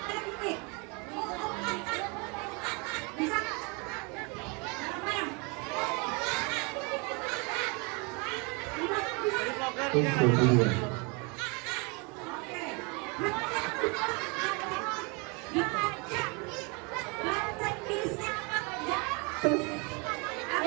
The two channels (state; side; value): quieter; left; 31.1 dB